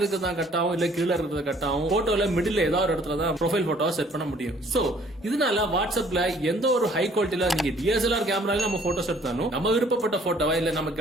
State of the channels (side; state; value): both; normal; correlation 0.58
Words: கட் ஆகும், இல்ல கீழே இருக்கிறத கட் ஆகும். போட்டோல மிடில் ஏதாவது ஒரு இடத்துல தான் ப்ரொஃபைல் போட்டோவை செட் பண்ண முடியும். சோ இதனால வாட்ஸ்அப்ல எந்த ஒரு ஹை குவாலிட்டியில நீங்க டிஎஸ்எல்ஆர் கேமரால நம்ம போட்டோஸ் எடுத்தாலும் நம்ம விருப்பப்பட்ட போட்டோவா, இல்ல நம்ம